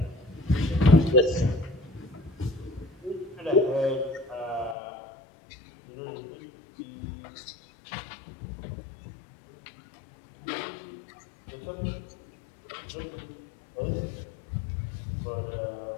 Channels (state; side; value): drops out; right; at 4.8 s